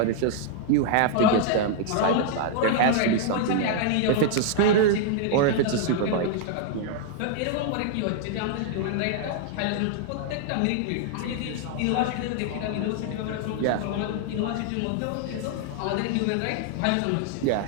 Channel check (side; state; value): both; different; correlation 0.00